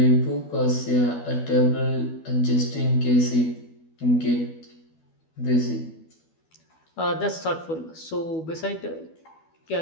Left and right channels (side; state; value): right; late; 12 ms